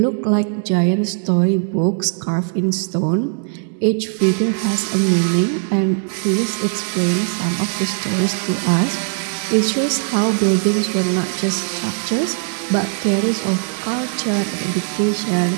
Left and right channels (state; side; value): silent; left; digital silence